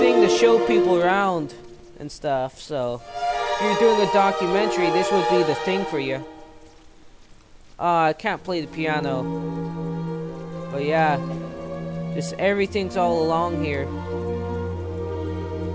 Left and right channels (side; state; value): both; identical; correlation 1.00